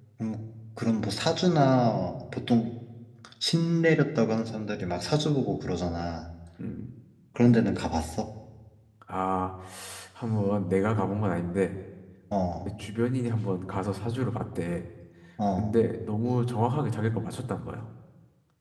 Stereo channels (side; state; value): both; identical; correlation 1.00